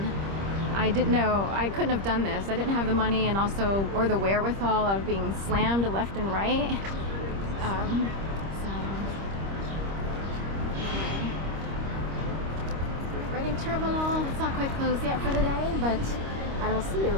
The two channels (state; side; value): late; left; 25 ms